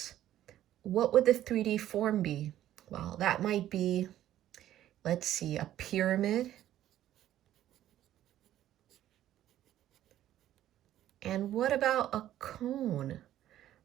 what would the 3D form be? Well, that might be, let's see, a pyramid. And what about a cone?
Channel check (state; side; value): quieter; left; 12.6 dB